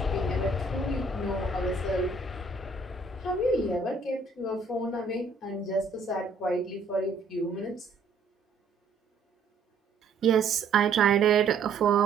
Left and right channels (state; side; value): quieter; left; 3.9 dB